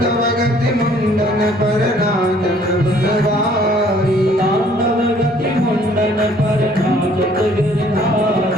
गति मुंडन पर नाचत बनवारी, तांडव गति मुंडन पर नाचत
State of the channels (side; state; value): both; normal; correlation 0.59